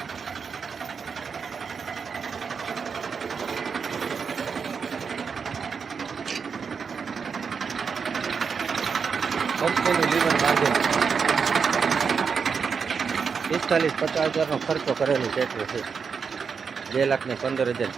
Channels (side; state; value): left; quieter; 5.9 dB